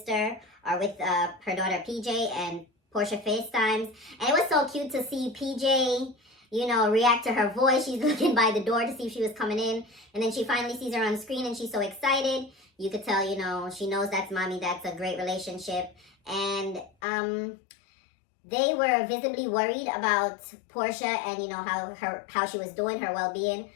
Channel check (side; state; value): right; drops out; at 16.9 s